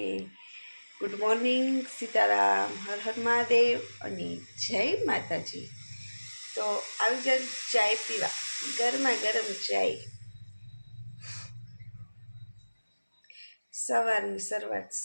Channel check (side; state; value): both; inverted; correlation -1.00